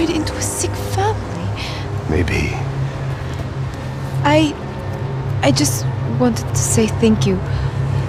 into a sick family. Maybe. I just wanted to say thank you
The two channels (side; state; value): both; identical; correlation 1.00